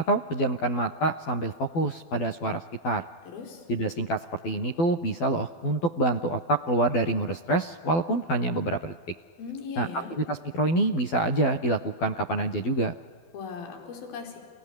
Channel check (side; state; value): right; late; 12 ms